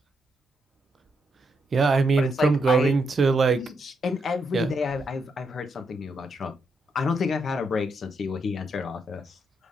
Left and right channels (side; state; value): both; normal; correlation 0.80